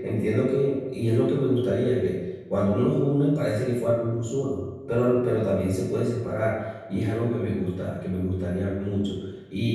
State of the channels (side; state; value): both; identical; correlation 1.00